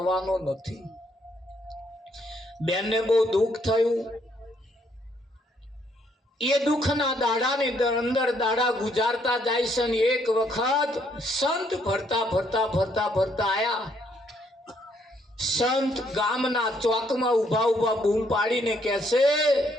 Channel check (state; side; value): normal; both; correlation 0.70